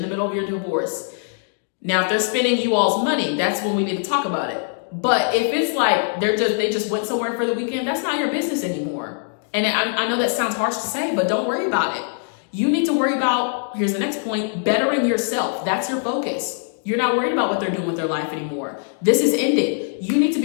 middle of your divorce, now if they're spending you all's money, that's when we need to talk about it. But if it's like they just went somewhere for the weekend, that's not your business anymore. And I know that sounds harsh to say, but don't worry about it. You need to worry about, here's the next point, bettering yourself. That's your focus. You're not worried about what they're doing with their life anymore. This is ending. You need to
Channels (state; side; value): silent; right; digital silence